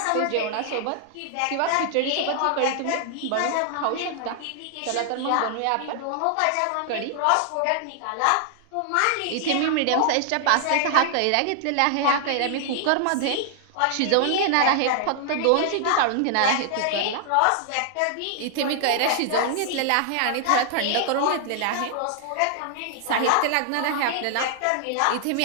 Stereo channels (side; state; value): both; different; correlation 0.00